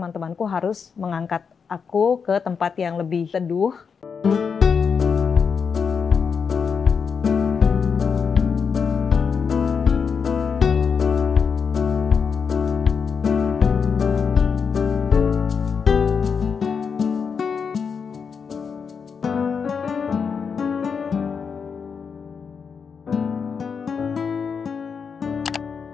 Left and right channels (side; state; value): right; quieter; 6.1 dB